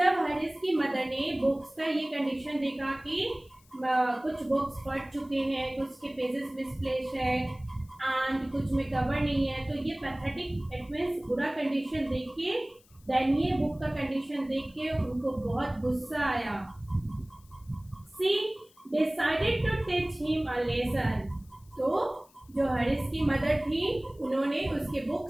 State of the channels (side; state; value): left; noise; hiss, 29 dB below the sound